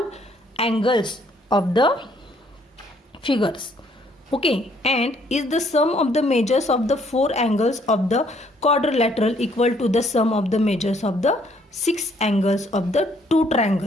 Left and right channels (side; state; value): both; normal; correlation 0.66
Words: angles of the figures. Okay, and is the sum of the measures of the 4 angles of the quadrilateral equal to the sum of the measures of the 6 angles of the 2